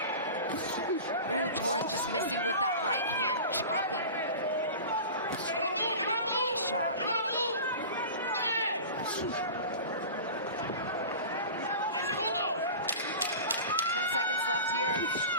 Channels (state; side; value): inverted; both; correlation -0.34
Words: Ooh, Torres just missing with that right hand chopping shot. 10 seconds left here